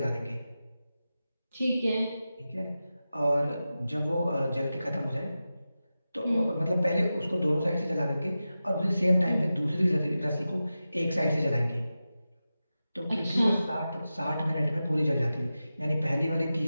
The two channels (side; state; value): both; inverted; correlation -0.93